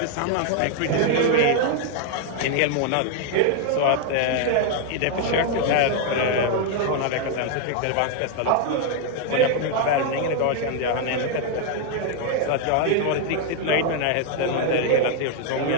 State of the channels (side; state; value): both; different; correlation 0.00